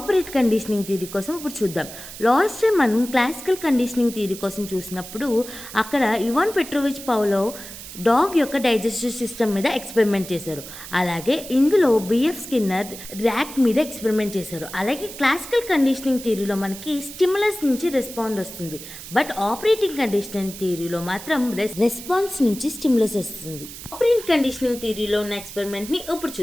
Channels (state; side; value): noise; right; hiss, 13 dB below the sound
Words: conditioning theory కోసం ఇప్పుడు చూద్దాం. లాస్ట్ టైం మనం క్లాసికల్ కండిషనింగ్ థియరీ కోసం చూసినప్పుడు అక్కడ ఇవాన్ పెట్రోవిచ్ పౌలోవ్ డాగ్ యొక్క డైజెస్టివ్ సిస్టమ్ మీద ఎక్స్పెరిమెంట్ చేశారు. అలాగే ఇందులో బిఎఫ్ స్కిన్నర్ ర్యాట్ మీద ఎక్స్పెరిమెంట్ చేశారు. అలాగే క్లాసికల్ కండిషనింగ్ థియరీలో మనకి స్టిమ్యులస్ నుంచి రెస్పాండ్ వస్తుంది, బట్ ఆపరేటింగ్ కండిషనింగ్ థియరీలో మాత్రం రెస్పాన్స్ నుంచి స్టిమ్యులస్ వస్తుంది. ఆపరెంట్ కండిషనింగ్ థియరీలో ఉన్న ఎక్స్పెరిమెంట్ని ఇప్పుడు